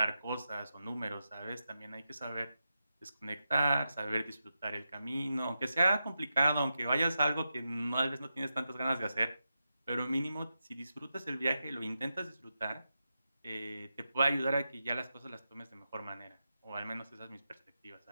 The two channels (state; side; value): inverted; both; correlation -0.89